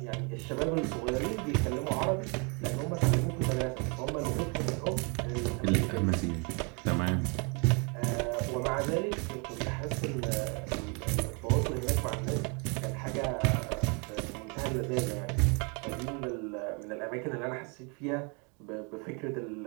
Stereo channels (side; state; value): left; quieter; 33.9 dB